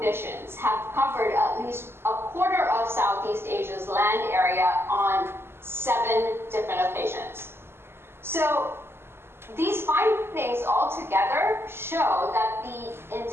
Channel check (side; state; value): left; late; 0.12 ms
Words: have covered at least a quarter of Southeast Asia's land area on 7 different occasions. So these findings altogether show that the